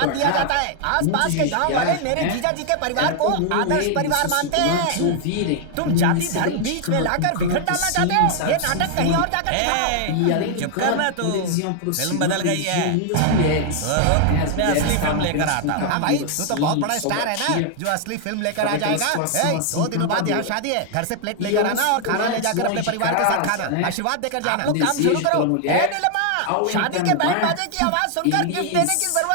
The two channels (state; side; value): different; both; correlation 0.00